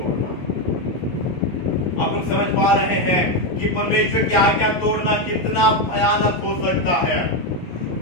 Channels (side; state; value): right; late; 11 ms